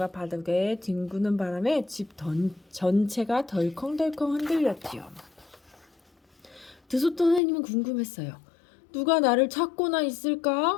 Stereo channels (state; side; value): drops out; right; at 7.4 s